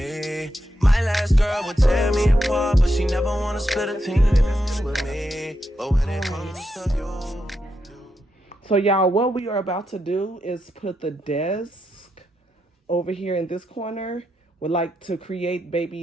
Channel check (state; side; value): normal; both; correlation 0.84